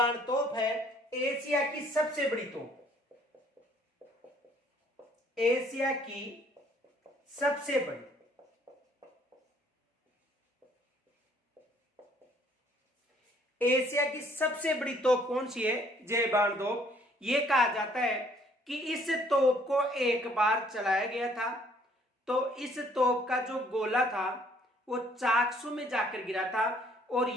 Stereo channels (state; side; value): normal; both; correlation 0.61